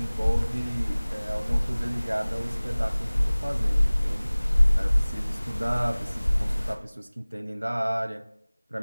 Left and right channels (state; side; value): inverted; both; correlation -1.00